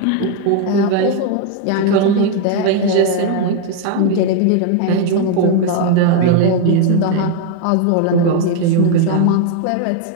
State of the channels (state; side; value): different; both; correlation 0.01